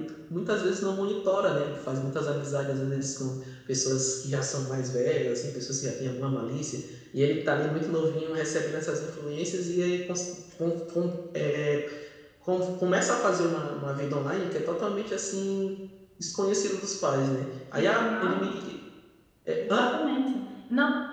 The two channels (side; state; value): both; identical; correlation 1.00